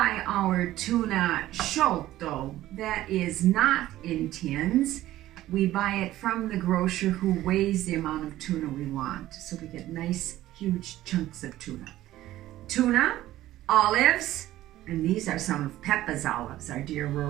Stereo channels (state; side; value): quieter; left; 14.8 dB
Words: our tuna sciolto, that is not in tins. We buy it from the grocer who weighs the amount of tuna we want, so we get nice huge chunks of tuna. Tuna, olives, and these are some of Peppa's olives, our dear